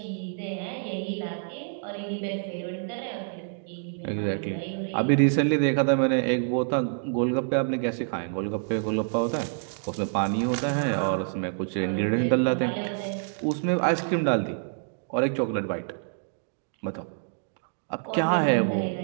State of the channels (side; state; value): left; silent; digital silence